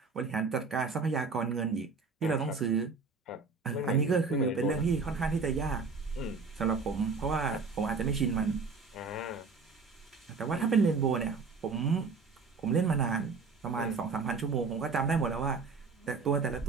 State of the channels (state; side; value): quieter; left; 4.6 dB